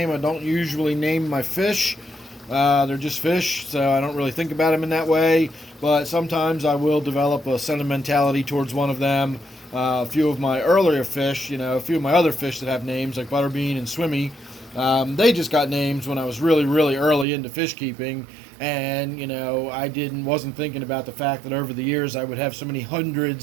I don't usually name my fish. They're just fish, so I don't really think about them in that way. But sometimes I will develop a sentimentality towards one of them. A few of my earlier fish, a few of my other fish that have names, like Butterbean and Swimmy, they just got names when I was really, really early into fish keeping. And, I wasn't thinking about the fact that over the years I would have so many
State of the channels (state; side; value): drops out; left; at 17.2 s